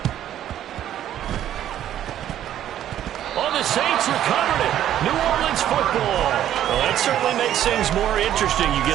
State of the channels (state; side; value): quieter; left; 11.4 dB